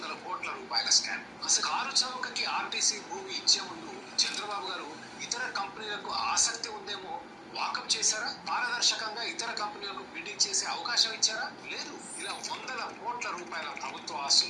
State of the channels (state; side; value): identical; both; correlation 1.00